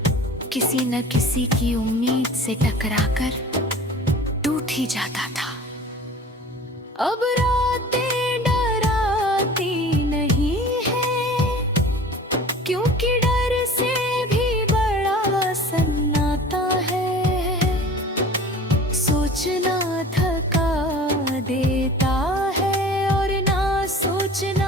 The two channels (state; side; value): normal; both; correlation 0.42